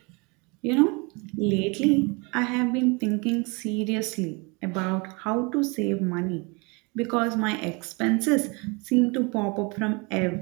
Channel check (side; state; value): left; quieter; 29.4 dB